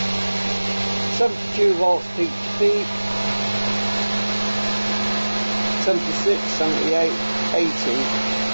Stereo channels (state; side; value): inverted; both; correlation -1.00